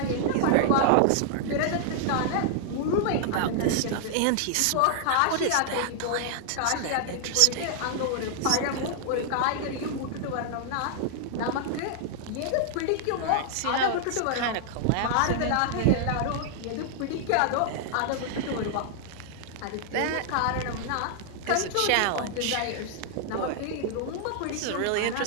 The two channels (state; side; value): different; both; correlation -0.01